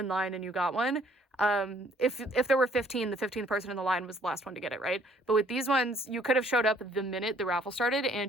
line and you got one. If there were 15, the 15th person in the line was the last one to get it, right? But with these ones, you could have showed up the minute the raffle started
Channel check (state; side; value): normal; both; correlation 0.61